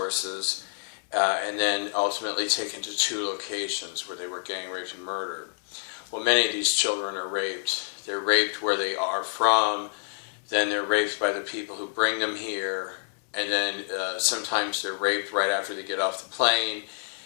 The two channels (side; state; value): right; silent; 60 dB below the other